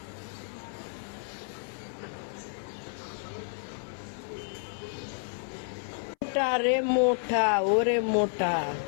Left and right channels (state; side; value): silent; right; 57 dB below the other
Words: মোটা রে মোটা, ওরে মোটা,